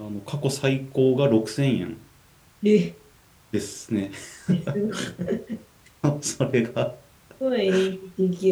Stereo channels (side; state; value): both; identical; correlation 1.00